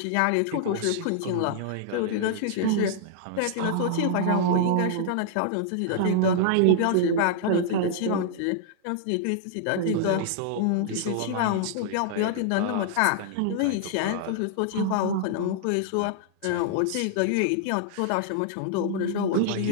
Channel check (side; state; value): both; different; correlation -0.01